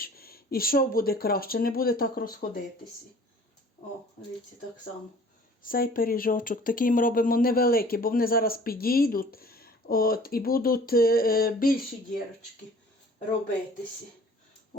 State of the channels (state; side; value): normal; both; correlation 0.50